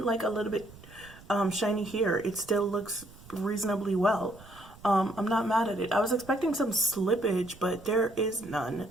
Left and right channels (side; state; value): right; noise; rumble, 21 dB below the sound